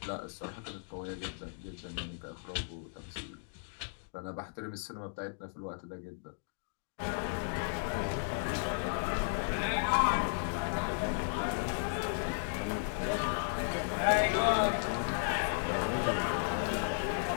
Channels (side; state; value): right; silent; digital silence